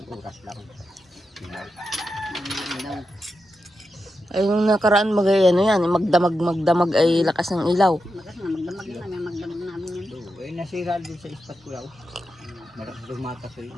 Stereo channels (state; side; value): normal; both; correlation 0.88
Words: lang. Ilaw. Ay, yung nakaraan yan, magdamag ay lakas ng ilaw. Makas na, magdamag na namin, magdamag namin yan. Eh nasira din sa spot ko daw. Malakas lumakas sa